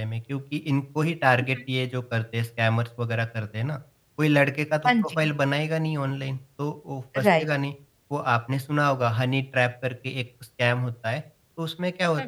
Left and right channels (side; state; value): both; identical; correlation 1.00